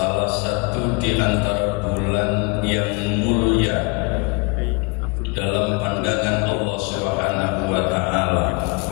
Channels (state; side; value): quieter; right; 28.4 dB